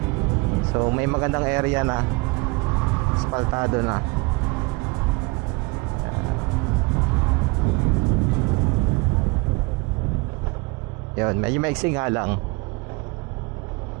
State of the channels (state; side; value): quieter; left; 25.8 dB